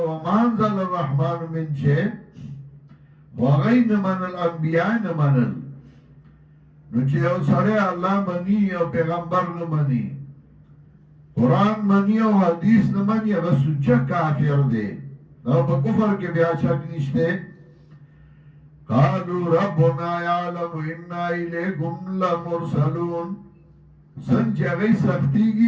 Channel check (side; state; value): both; identical; correlation 1.00